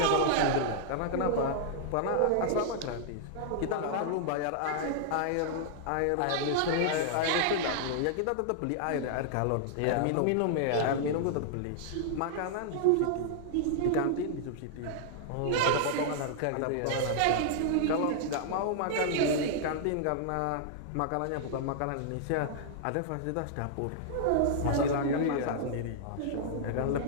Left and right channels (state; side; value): different; both; correlation -0.01